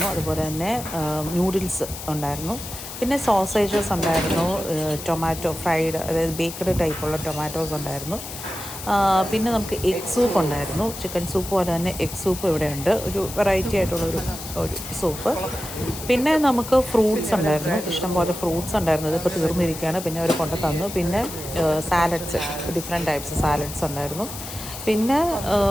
അതുപോലെ തന്നെ നൂഡിൽസ് ഉണ്ടായിരുന്നു, പിന്നെ സോസേജസ് ഉണ്ടായിരുന്നു, ടൊമാറ്റോ ഫ്രൈഡ്, അതായത് ബേക്കഡ് ടൈപ്പുള്ള ടൊമാറ്റോസ് ഉണ്ടായിരുന്നു. പിന്നെ നമുക്ക് എഗ് സൂപ്പ് ഉണ്ടായിരുന്നു, ചിക്കൻ സൂപ്പ് പോലെ തന്നെ എഗ് സൂപ്പ് ഇവിടെ ഉണ്ട്, ഒരു വെറൈറ്റി ആയിട്ടുള്ളൊരു സൂപ്പ്. പിന്നെ നമുക്ക് ഫ്രൂട്ട്സ് ഉണ്ടായിരുന്നു, ഇഷ്ടംപോലെ ഫ്രൂട്ട്സ് ഉണ്ടായിരുന്നു. ഇതിപ്പോൾ തീർന്നിരിക്കുകയാണ്, പിന്നെ അവർ കൊണ്ടു തന്നു. പിന്നെ സാലഡ്സ്, ഡിഫറെൻറ്റ് ടൈപ്സ് സാലഡ്സ് ഉണ്ടായിരുന്നു. പിന്നെ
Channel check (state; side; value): noise; left; hiss, 10 dB below the sound